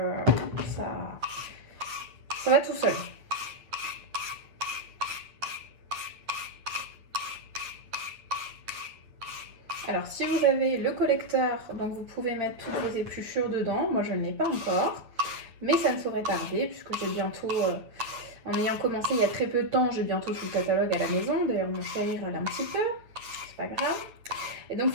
Ça va tout seul. Alors si vous avez le collecteur, donc vous pouvez mettre toutes vos épluchures dedans. Moi je ne l'ai pas encore, mais ça ne saurait tarder puisque j'ai bientôt, en ayant commencé il y a très peu de temps, j'ai bientôt tout le catalogue à la maison. D'ailleurs mon chéri râle un petit peu. Pas grave. Et donc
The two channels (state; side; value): late; left; 9.2 ms